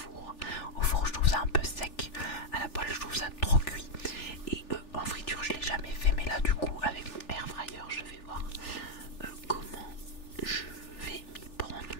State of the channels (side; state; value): right; late; 3.4 ms